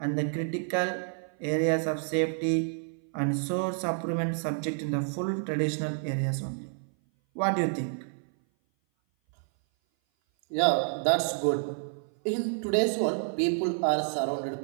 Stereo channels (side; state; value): left; silent; 57 dB below the other